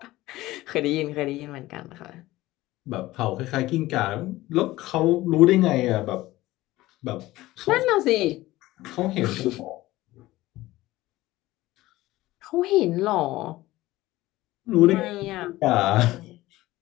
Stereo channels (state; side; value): quieter; right; 17.5 dB